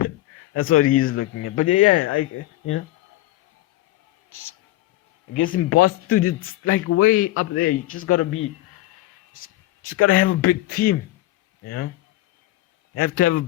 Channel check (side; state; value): right; quieter; 16.6 dB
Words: That's what he's looking at. But yeah, I guess in Boston, dude, it's like way up there. You just gotta have a big team. You have to have a